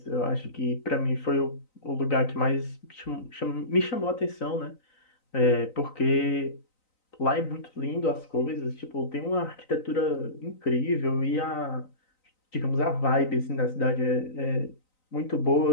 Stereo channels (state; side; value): late; right; 3.9 ms